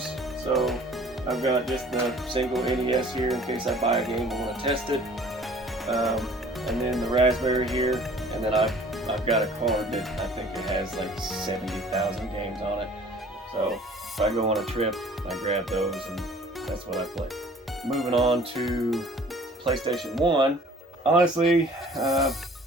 So I've got just the single NES here in case I buy a game and want to test it. And then the Raspberry here. And then I've got a card that I think it has like 70,000 games on it. So if I go on a trip, I grab those and that's what I play. Moving on to PlayStation 1. Honestly,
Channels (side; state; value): both; normal; correlation 0.51